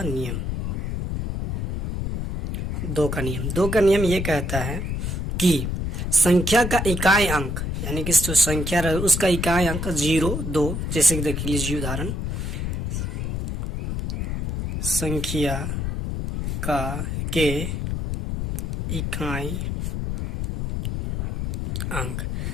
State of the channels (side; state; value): left; noise; rumble, 2 dB below the sound